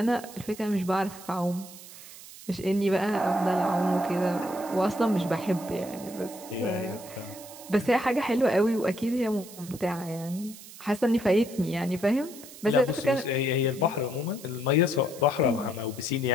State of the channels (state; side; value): noise; right; hiss, 17 dB below the sound